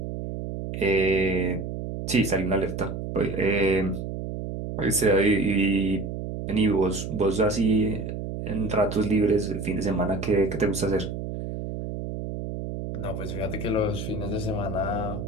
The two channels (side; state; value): right; noise; hum, 6 dB below the sound